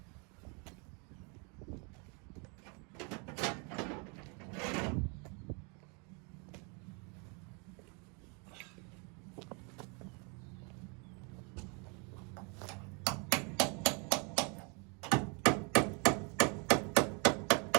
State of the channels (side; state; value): left; quieter; 33.9 dB